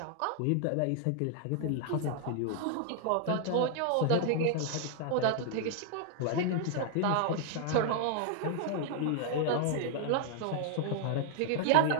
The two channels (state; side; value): different; both; correlation 0.00